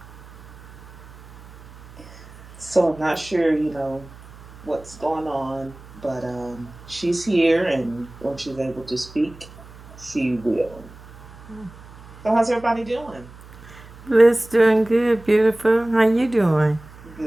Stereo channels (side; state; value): right; noise; hum, 20 dB below the sound